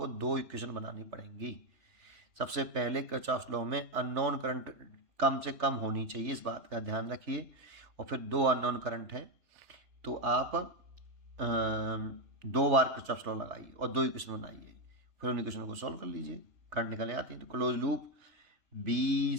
दो इक्वेशन बनानी पड़ेंगी। सबसे पहले किरचॉफ लॉ में अननोन करंट कम से कम होनी चाहिए, इस बात का ध्यान रखिए। और फिर दो अननोन करंट है तो आप दो बार किरचॉफ लॉ लगाइए और दो इक्वेशन बनाइए, फिर उन इक्वेशन को सॉल्व कर लीजिए, करंट निकल आती है। तो क्लोज लूप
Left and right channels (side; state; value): left; late; 3.4 ms